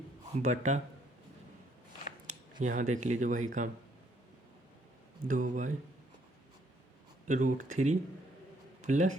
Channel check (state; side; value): normal; both; correlation 0.68